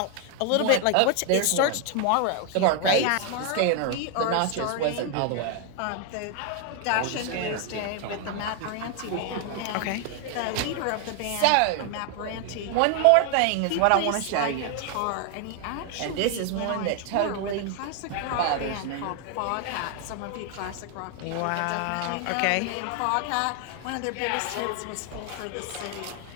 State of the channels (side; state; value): both; different; correlation 0.00